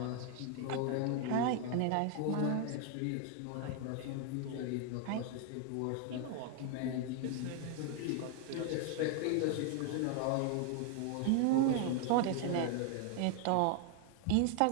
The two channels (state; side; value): different; both; correlation 0.00